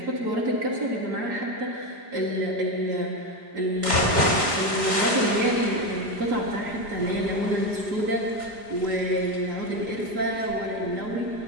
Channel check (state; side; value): late; left; 5.0 ms